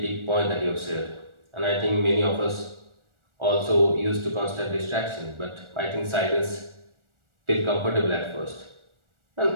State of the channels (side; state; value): left; late; 1.4 ms